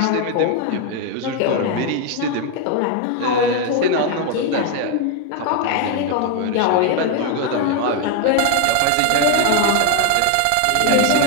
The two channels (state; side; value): different; both; correlation 0.01